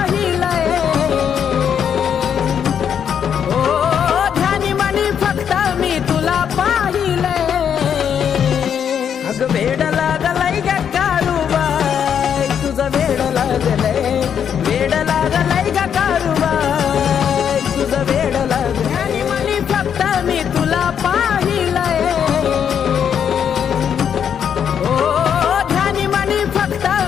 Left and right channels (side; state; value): right; quieter; 8.2 dB